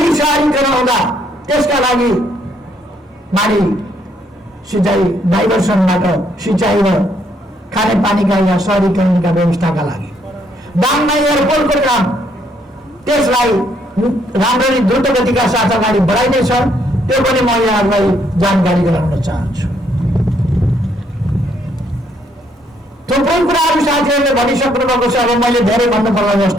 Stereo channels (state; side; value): normal; both; correlation 0.70